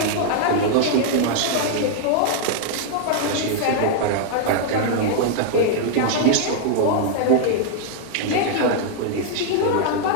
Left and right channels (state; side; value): different; both; correlation -0.01